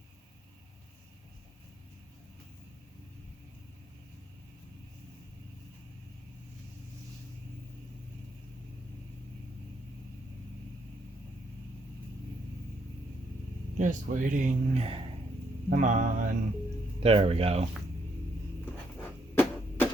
Just waiting. Come on. There we go.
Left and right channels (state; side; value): normal; both; correlation 0.74